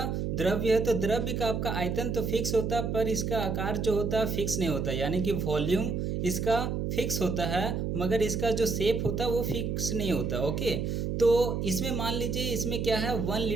द्रव्य है। तो द्रव्य का आपका आयतन तो फिक्स होता है, पर इसका आकार जो होता है फिक्स नहीं होता, यानी कि वॉल्यूम इसका फिक्स होता है, मगर इसका जो शेप होता है वो फिक्स नहीं होता। ओके, तो इसमें मान लीजिए, इसमें क्या है, 1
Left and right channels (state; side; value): noise; right; hum, 1 dB below the sound